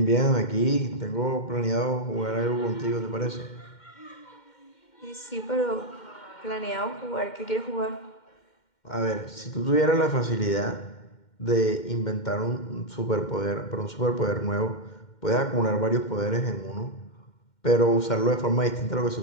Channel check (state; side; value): late; right; 2.1 ms